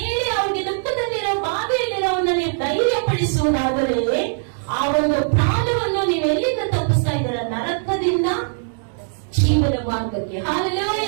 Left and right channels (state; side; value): silent; left; digital silence